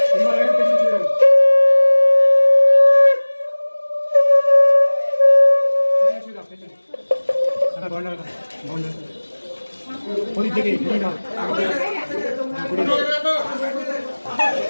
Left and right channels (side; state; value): both; inverted; correlation -1.00